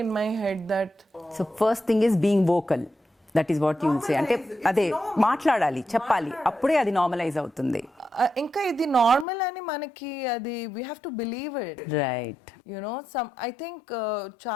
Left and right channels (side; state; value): right; drops out; at 9.2 s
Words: in my head that so first thing is being vocal, that is what you say. అంటే అదే మాట్లాడాలి, చెప్పాలి, అప్పుడే అది నార్మలైజ్ అవుతుంది. ఇంకా ఇది నార్మల్ అని మనకి అది we have to believe it, right? You know I think